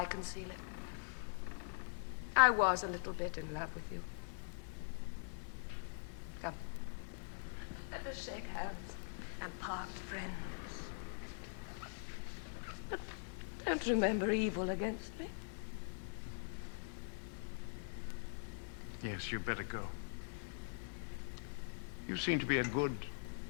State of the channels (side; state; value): right; silent; digital silence